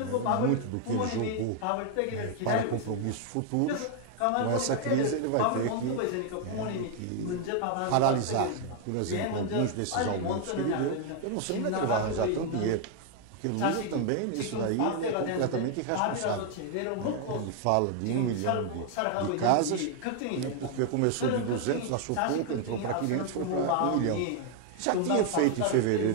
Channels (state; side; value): different; both; correlation 0.00